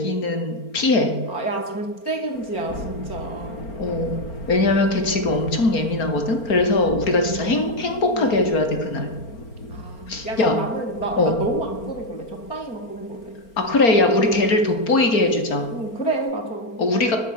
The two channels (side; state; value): right; late; 4.4 ms